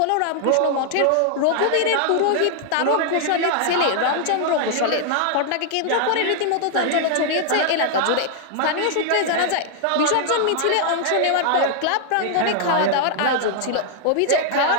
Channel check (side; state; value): both; different; correlation -0.01